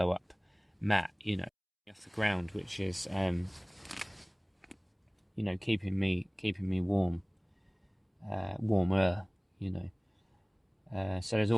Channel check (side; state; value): both; identical; correlation 1.00